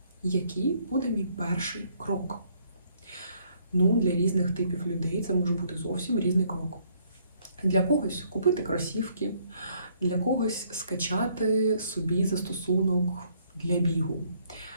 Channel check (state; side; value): inverted; both; correlation -0.67